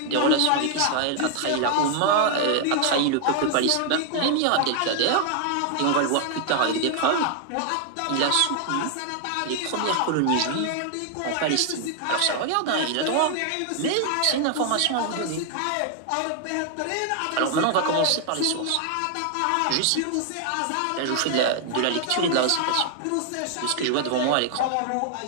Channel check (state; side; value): different; both; correlation 0.00